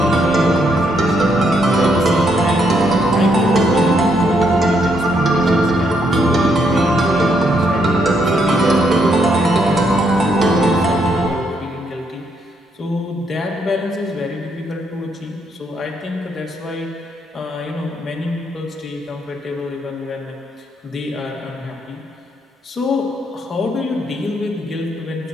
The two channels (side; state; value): both; normal; correlation 0.74